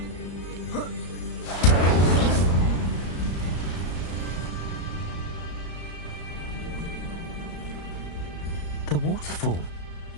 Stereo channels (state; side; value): late; right; 34 ms